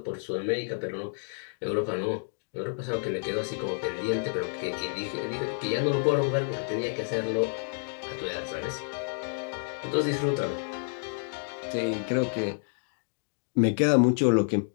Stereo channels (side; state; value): right; silent; digital silence